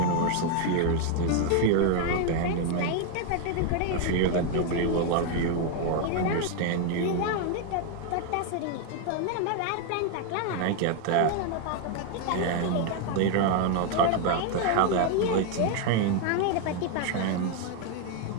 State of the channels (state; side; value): different; both; correlation 0.01